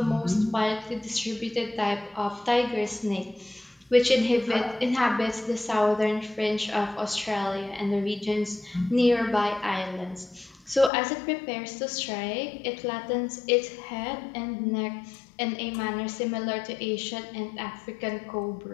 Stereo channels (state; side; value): drops out; right; at 10.9 s